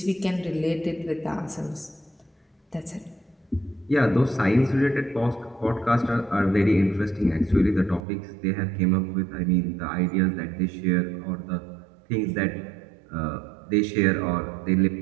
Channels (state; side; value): drops out; left; at 8.0 s